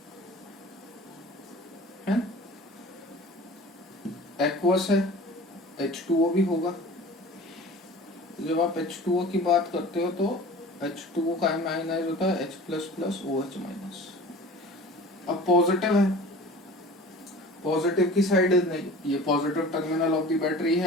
है. एक्वस है, H2O भी होगा. जब आप H2O की बात करते हो तो H2O का आयनाइज होता है H plus plus OH minus. अब पॉजिटिव है, पॉजिटिव की साइड नहीं, ये positive terminal of the battery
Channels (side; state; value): both; normal; correlation 0.41